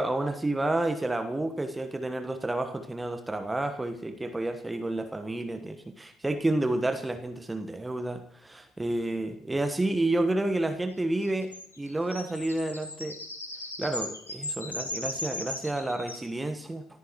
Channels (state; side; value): normal; both; correlation 0.87